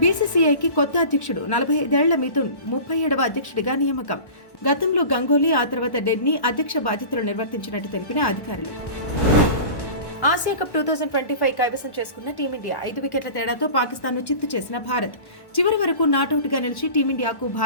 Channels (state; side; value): late; right; 1.1 ms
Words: బీసీసీఐకి కొత్త అధ్యక్షుడు. 45 ఏళ్ల మిథున్ 37వ అధ్యక్షుడిగా నియామకం. గతంలో గంగోలీ, ఆ తర్వాత డెడ్నీ అధ్యక్ష బాధ్యతలు నిర్వర్తించినట్టు తెలిపిన అధికారులు. ఆసియా కప్ 2025 కైవసం చేసుకున్న టీమిండియా. 5 వికెట్ల తేడాతో పాకిస్తాన్ను చిత్తు చేసిన భారత్. చివరి వరకు నాటౌట్గా నిలిచి టీమిండియాకు